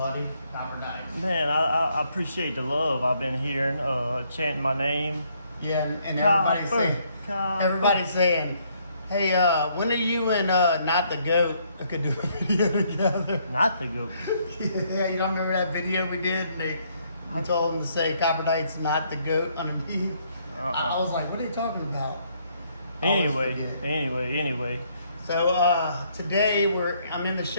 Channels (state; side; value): inverted; both; correlation -0.69